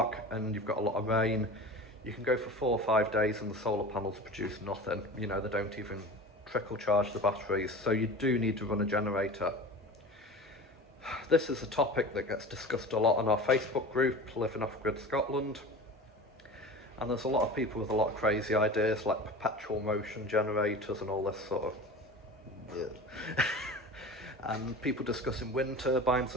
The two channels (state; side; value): normal; both; correlation 0.34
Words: and you've got a lot of rain, you can go for 4 or 5 days and the solar panels produce nothing. You know, they don't even trickle charge the batteries, so you do need to run a generator. This is a topic that gets discussed a lot on our Facebook group, Living Off Grid Scotland. And there's a lot of people with a lot of crazy ideas like perpetual motion generators and all this sort of and people discussing wind turbines